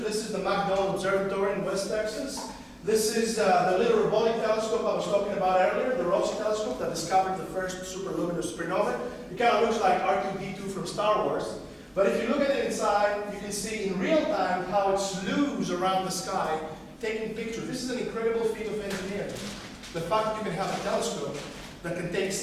is the McDonald Observatory in West Texas. This is the little robotic telescope I was talking about earlier, the Rossi telescope that discovered the first superluminous supernova. It kind of looks like R2-D2 from Star Wars. But if you look at it inside, you can see in real time how it slews around the sky, taking pictures. This is an incredible feat of engineering. The fact that you can have a telescope that can take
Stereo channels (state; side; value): identical; both; correlation 1.00